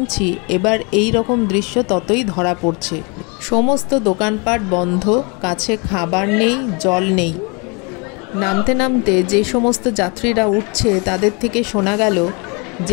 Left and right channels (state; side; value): quieter; right; 31.6 dB